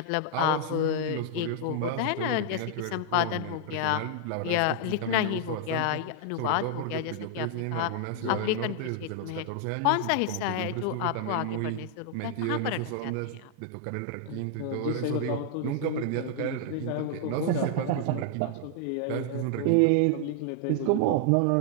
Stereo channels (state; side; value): different; both; correlation 0.00